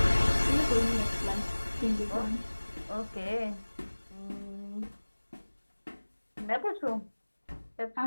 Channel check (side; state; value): both; inverted; correlation -1.00